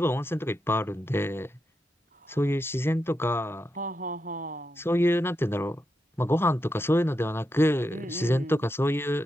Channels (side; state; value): both; normal; correlation 0.85